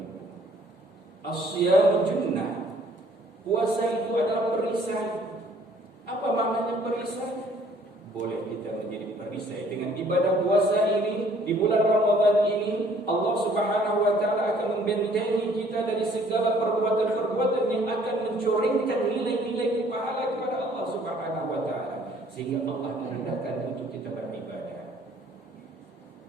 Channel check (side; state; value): both; normal; correlation 0.59